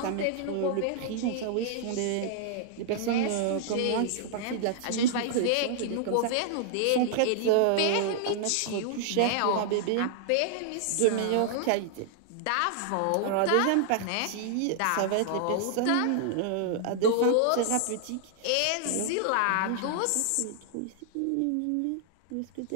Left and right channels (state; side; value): different; both; correlation -0.01